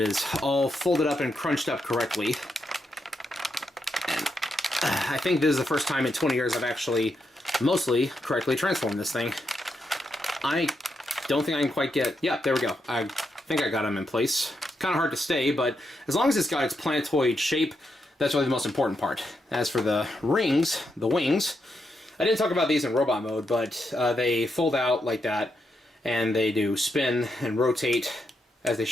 all folded up and crunched up correctly. And I think this is the first time in 20 years I've actually mostly correctly transformed this thing. I don't think I can quite get... Yeah, there we go. I think I got them in place. Kind of hard to stay, but as long as it's got its planetoid shape, that's really the most important part. As for the rings, the wings, I didn't talk about these in robot mode, but they fold out like that, and they do spin and rotate as they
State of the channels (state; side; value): normal; both; correlation 0.82